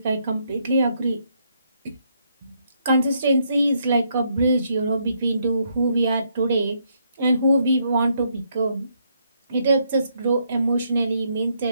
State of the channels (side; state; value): both; inverted; correlation -0.74